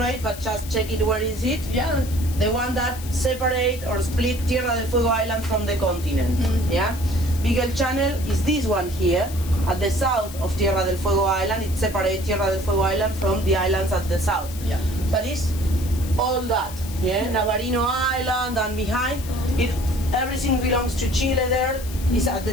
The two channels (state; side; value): noise; left; hiss, 14 dB below the sound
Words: but just check it. Where is it? Yeah. The one that separate or split Tierra del Fuego Island from the continent. Yeah. Beagle Channel is this one here at the south of Tierra del Fuego Island. It separates Tierra del Fuego Island from the islands at the south. Yeah. That is all that. Yeah. Navarino Island and behind it, everything belongs to Chile. There is at